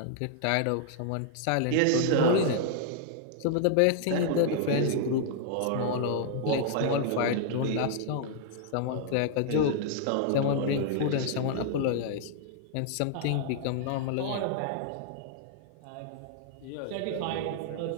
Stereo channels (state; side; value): different; both; correlation -0.01